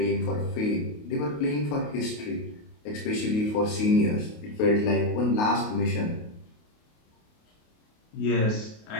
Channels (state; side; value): late; right; 28 ms